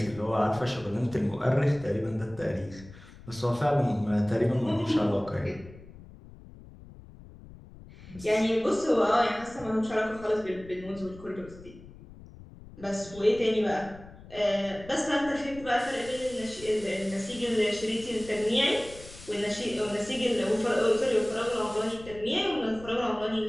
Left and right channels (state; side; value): noise; left; rumble, 18 dB below the sound